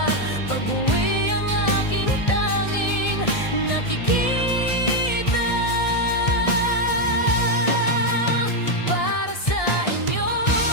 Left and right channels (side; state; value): right; late; 1.7 ms